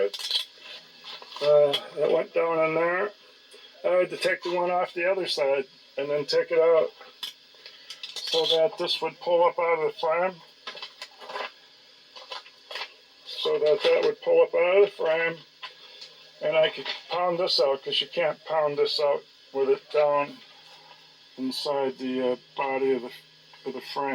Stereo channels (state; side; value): identical; both; correlation 1.00